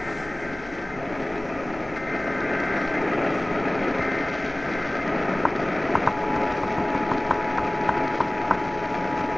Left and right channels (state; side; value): noise; left; hum, 19 dB below the sound